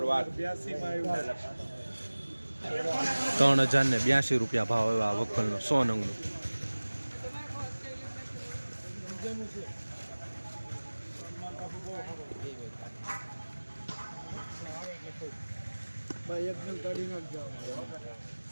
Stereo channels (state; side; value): inverted; both; correlation -1.00